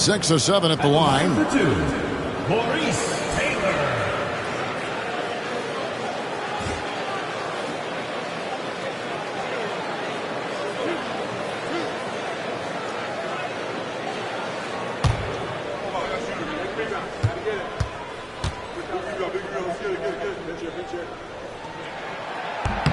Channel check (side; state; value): both; identical; correlation 1.00